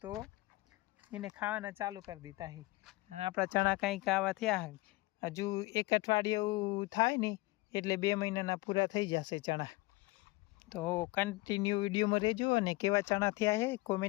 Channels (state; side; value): quieter; right; 21.7 dB